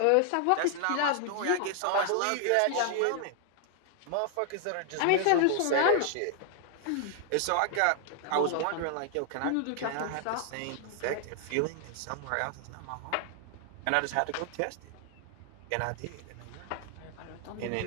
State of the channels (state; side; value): different; both; correlation 0.00